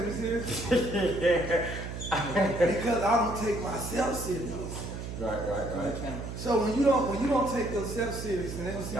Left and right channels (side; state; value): right; noise; hum, 7 dB below the sound